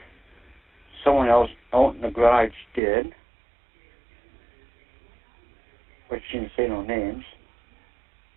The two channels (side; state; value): left; drops out; at 2.8 s